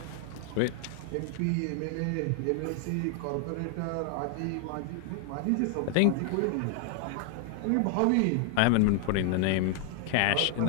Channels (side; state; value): both; different; correlation 0.00